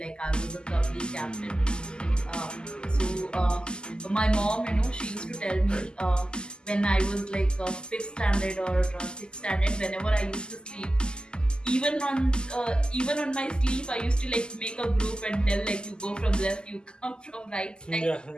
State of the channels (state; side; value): late; right; 0.047 ms